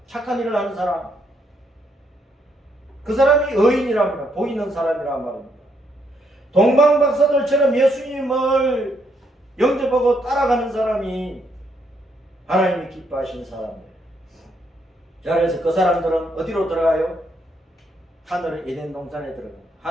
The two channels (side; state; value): both; normal; correlation 0.74